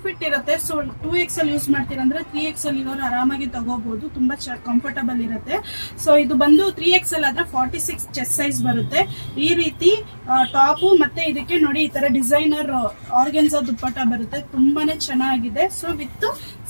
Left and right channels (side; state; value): both; inverted; correlation -1.00